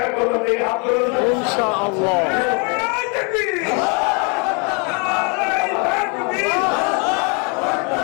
করবো এই হাত ধরুন ইনশাআল্লাহ।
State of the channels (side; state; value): right; quieter; 33.9 dB